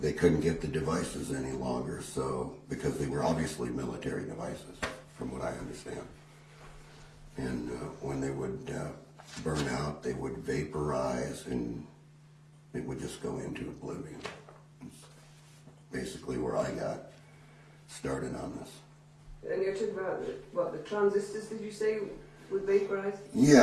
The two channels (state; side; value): identical; both; correlation 1.00